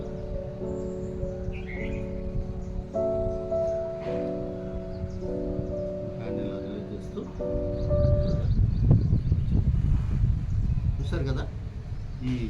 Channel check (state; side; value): identical; both; correlation 1.00